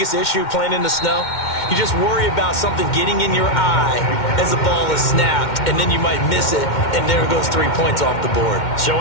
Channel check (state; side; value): late; right; 2.1 ms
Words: issue playing in the snow? You just worry about something getting in your eye as the ball is snapped, and then you might miss it, and there goes 3 points off the board. So